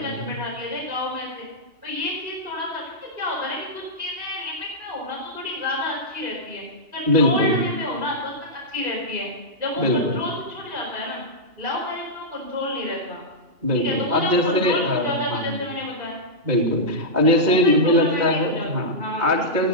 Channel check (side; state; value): left; late; 2.8 ms